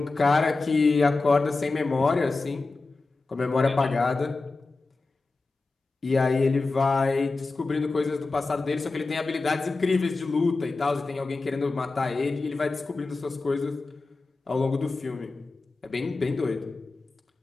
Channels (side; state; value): right; quieter; 3.6 dB